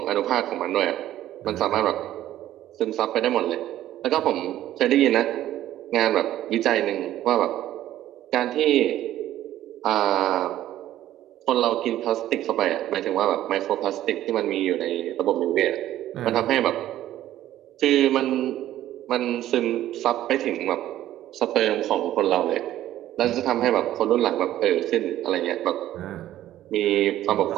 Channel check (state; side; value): quieter; left; 13.2 dB